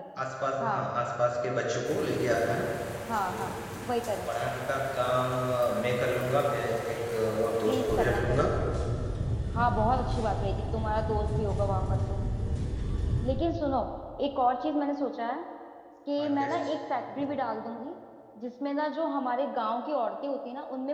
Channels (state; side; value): identical; both; correlation 1.00